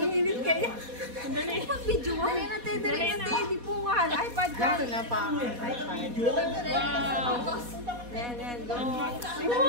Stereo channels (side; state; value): left; late; 4.1 ms